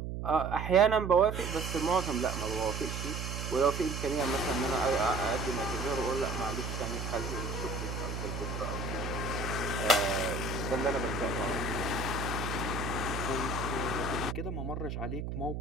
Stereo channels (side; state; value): right; noise; hum, 4 dB below the sound